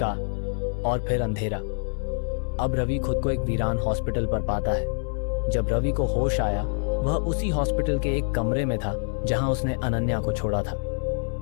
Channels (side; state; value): right; silent; 61 dB below the other